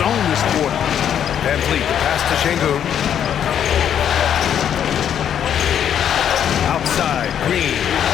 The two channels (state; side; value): quieter; right; 9.2 dB